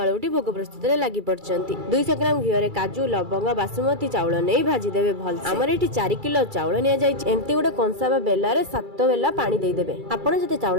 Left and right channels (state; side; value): late; left; 2.3 ms